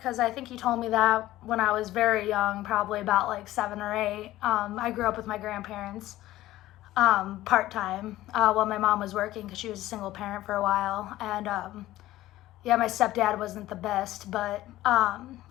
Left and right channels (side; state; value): right; quieter; 15.5 dB